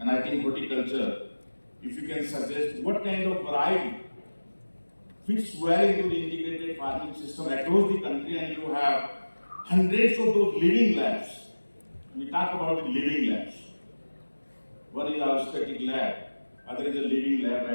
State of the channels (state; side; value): inverted; both; correlation -1.00